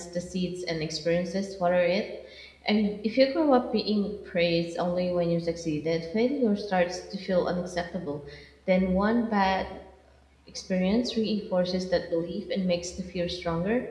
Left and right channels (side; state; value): both; identical; correlation 1.00